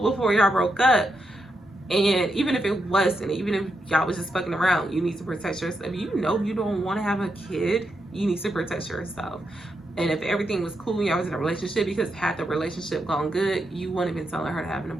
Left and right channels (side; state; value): both; normal; correlation 0.83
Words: before y'all broke up. And even if it wasn't, even if y'all was just fucking around, you need to protect yourself. If you know you don't want to have a kid, you need to protect yourself. And if everything was cool and y'all was in a relationship, because had the relationship gone good, you wouldn't have been telling her to have an